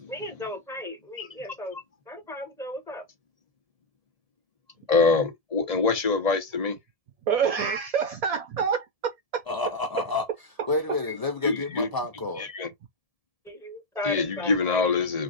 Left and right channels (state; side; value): late; left; 1.7 ms